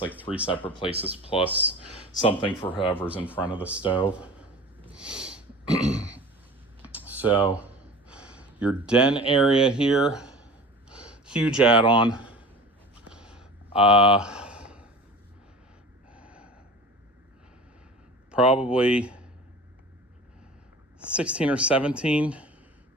3 separate places plus something for whoever's in front of the stove. So your den area here, huge add-on. Probably 16 or 17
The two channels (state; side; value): normal; both; correlation 0.38